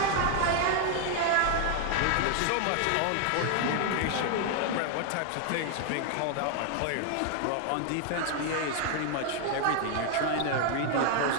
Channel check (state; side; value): different; both; correlation 0.00